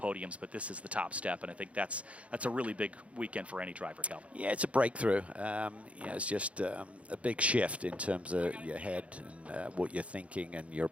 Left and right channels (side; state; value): left; late; 0.063 ms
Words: but this is the top step, and I think that's a really big weekend for any driver, Calvin. Yeah, it's a breakthrough. It's just a big shift in terms of your head and what you're thinking and your